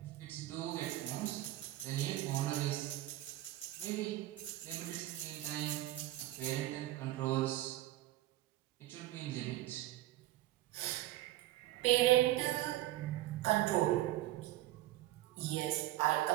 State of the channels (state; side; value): quieter; left; 15.9 dB